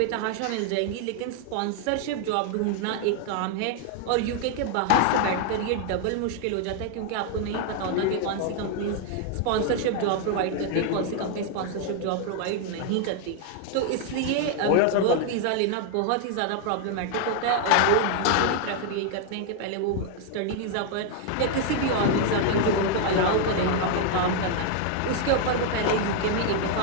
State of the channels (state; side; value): different; both; correlation 0.00